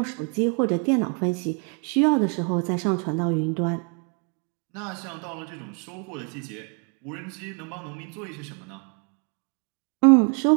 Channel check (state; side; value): quieter; left; 38.2 dB